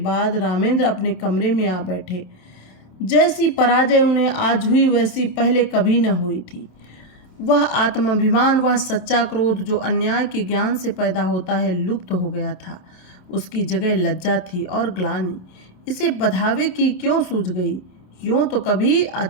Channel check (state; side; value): late; right; 27 ms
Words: रामेंद्र अपने कमरे में आ बैठे। जैसी पराजय उन्हें आज हुई वैसी पहले कभी न हुई थी। वह आत्माभिमान, वह सच्चा क्रोध जो अन्याय के ज्ञान से पैदा होता है, लुप्त हो गया था। उसकी जगह लज्जा थी और ग्लानि। इसे बधावे की क्यों सूझ गई? यूँ तो कभी